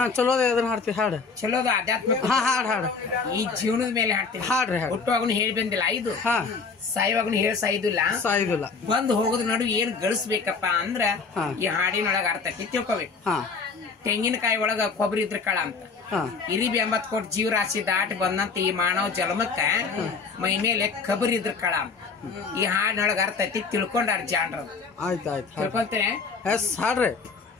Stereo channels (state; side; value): quieter; right; 4.9 dB